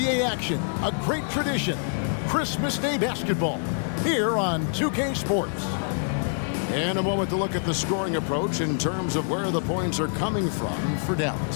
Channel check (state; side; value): silent; right; 61 dB below the other